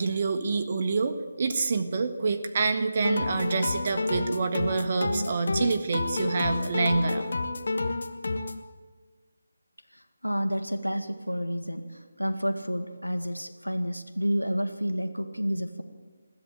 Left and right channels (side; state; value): both; inverted; correlation -0.91